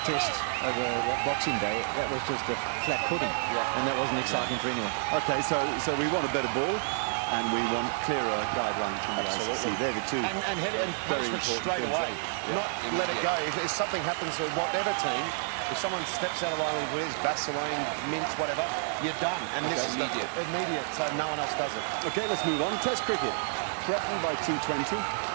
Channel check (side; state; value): left; silent; digital silence